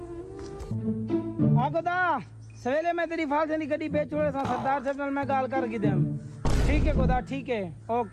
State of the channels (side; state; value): both; identical; correlation 1.00